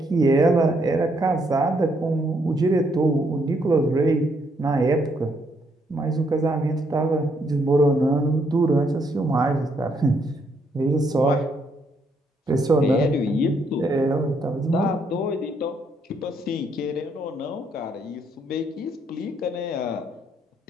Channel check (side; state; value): both; normal; correlation 0.73